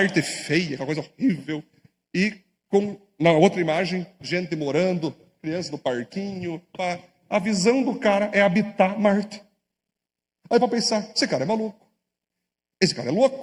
feia, aquela coisa horrível. E na outra imagem, gente morando, criança no parquinho. A visão do cara é habitar Marte. Aí para pensar, esse cara é maluco. Esse cara é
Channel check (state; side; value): identical; both; correlation 1.00